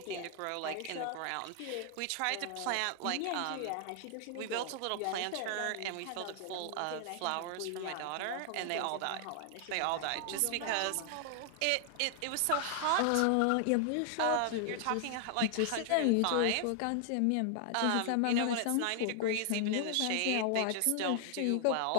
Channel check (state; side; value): different; both; correlation 0.00